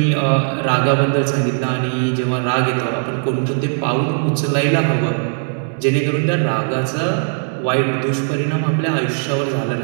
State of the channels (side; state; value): left; silent; 66 dB below the other